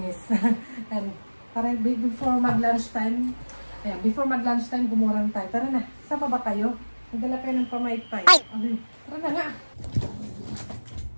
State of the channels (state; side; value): inverted; both; correlation -1.00